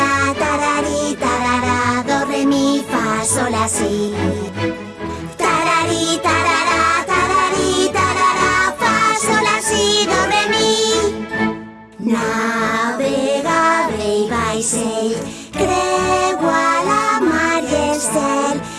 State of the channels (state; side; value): identical; both; correlation 1.00